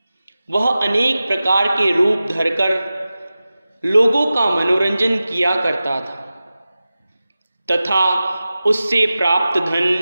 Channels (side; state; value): both; inverted; correlation -0.95